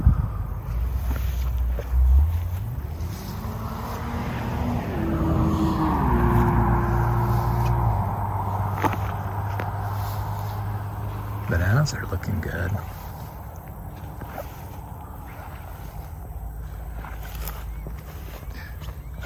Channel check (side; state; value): both; identical; correlation 1.00